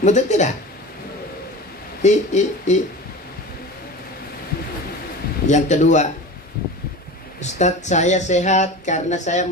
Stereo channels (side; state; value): both; normal; correlation 0.33